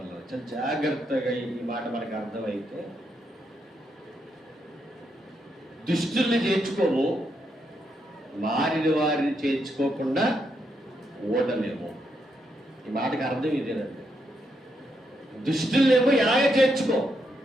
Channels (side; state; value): both; normal; correlation 0.80